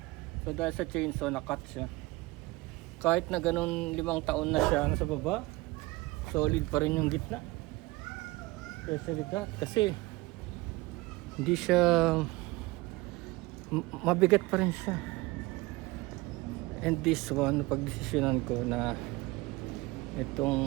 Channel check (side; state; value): left; quieter; 21.6 dB